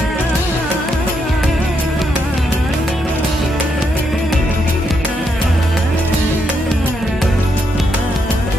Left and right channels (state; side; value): normal; both; correlation 0.79